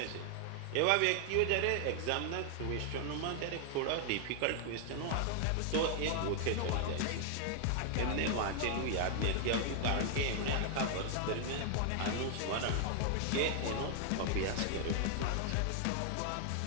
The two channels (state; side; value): different; both; correlation 0.00